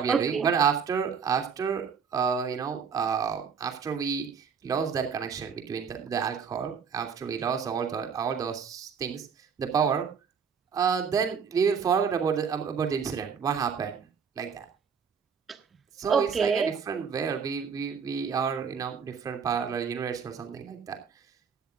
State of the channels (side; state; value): left; quieter; 6.4 dB